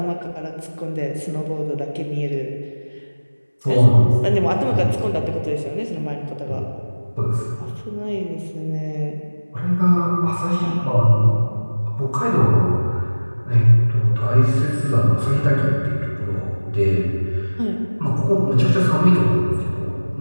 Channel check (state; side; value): inverted; both; correlation -1.00